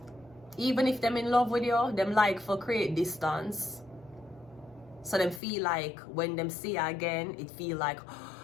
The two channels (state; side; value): drops out; right; at 5.4 s